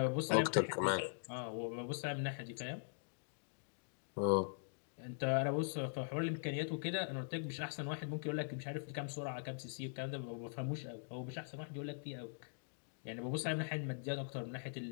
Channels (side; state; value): right; silent; digital silence